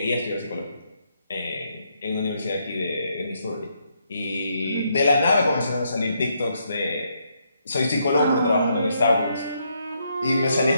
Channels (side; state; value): both; inverted; correlation -0.76